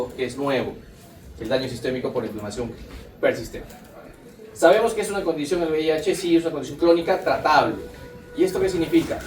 que es nuevo, el daño sistémico por inflamación persistente. Sabemos que es una condición, el VIH sí es una condición crónica tratable. ¿Y esto qué significa?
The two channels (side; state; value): both; identical; correlation 1.00